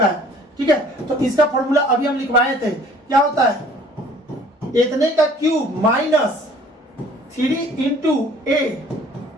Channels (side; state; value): both; normal; correlation 0.54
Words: है, ठीक है। तो इसका फॉर्मूला अभी हम लिखवाए थे, क्या होता है, इतने का क्यूब माइनस 3 इंटू ए